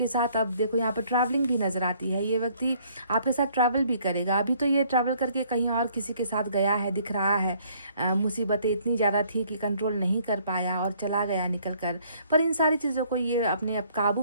साथ। अब देखो यहाँ पर ट्रैवलिंग भी नज़र आती है, ये व्यक्ति आपके साथ ट्रैवल भी करेगा। अभी तो ये ट्रैवल करके कहीं और किसी के साथ गया है, दिख रहा है। मुसीबतें इतनी ज़्यादा थी कि कंट्रोल नहीं कर पाया और चला गया निकल कर। पर इन सारी चीज़ों को ये अपने काबू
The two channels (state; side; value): inverted; both; correlation -0.62